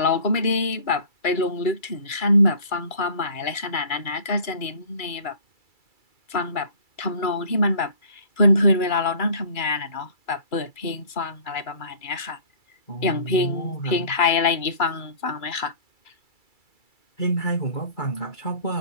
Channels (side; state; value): right; late; 2.3 ms